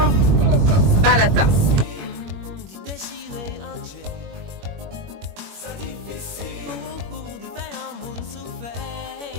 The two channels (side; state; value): left; late; 21 ms